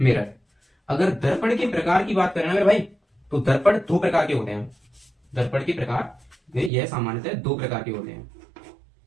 अगर दर्पण के प्रकार की बात करें ना मेरे भाई, तो दर्पण दो प्रकार के होते हैं। दर्पण के प्रकार यह सामान्यतः दो प्रकार के होते हैं।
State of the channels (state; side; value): drops out; left; at 6.7 s